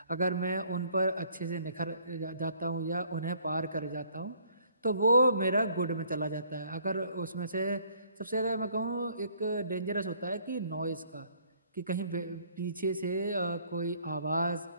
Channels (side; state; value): both; inverted; correlation -0.61